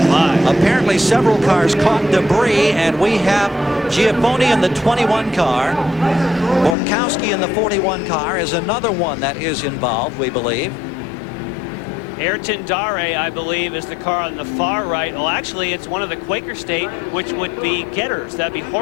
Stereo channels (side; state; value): right; drops out; at 6.8 s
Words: my. Apparently, several cars caught debris, and we have Giaffoni in the 21 car. Borkowski in the 41 car is another one that is involved, we believe. Ayrton Dare, I believe, is the car on the far right. Well, actually, it's one of the Quaker State, which would be Getters. That'd be